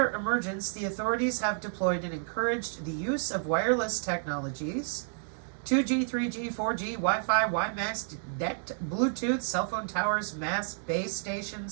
emergence, the authorities have deployed and encouraged the use of wireless technologies, 2G, 3G, 4G, Wi-Fi, WiMAX, DECT, Bluetooth, cell phone towers, mass base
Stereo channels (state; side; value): silent; left; digital silence